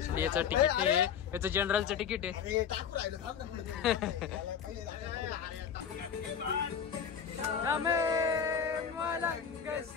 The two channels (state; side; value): quieter; right; 7.7 dB